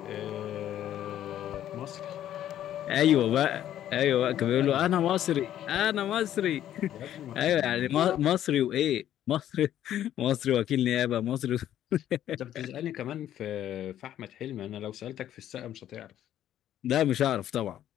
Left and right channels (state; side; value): quieter; right; 11.6 dB